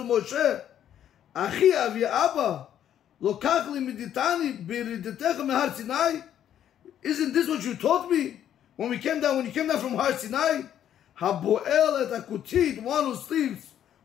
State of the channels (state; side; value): quieter; right; 10.3 dB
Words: Moshe, Achi avi Abba, lokach li miditani b'iridetecha mehar Sinai. Isn't this what you taught me when you came down from Har Sinai? Haboel et akutit, one who sleeps